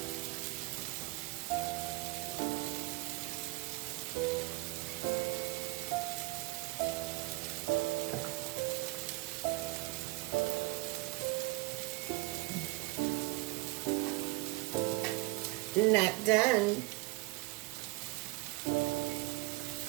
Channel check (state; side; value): quieter; left; 22.5 dB